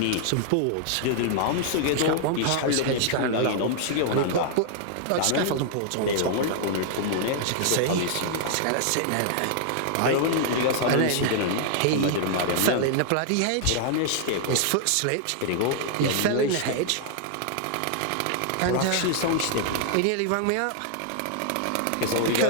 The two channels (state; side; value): different; both; correlation 0.00